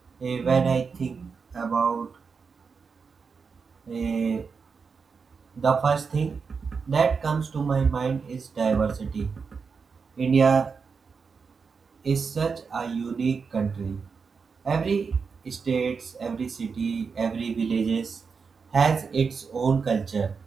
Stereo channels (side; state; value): left; quieter; 5.4 dB